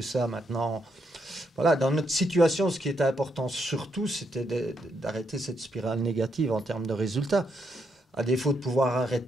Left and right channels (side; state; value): both; normal; correlation 0.78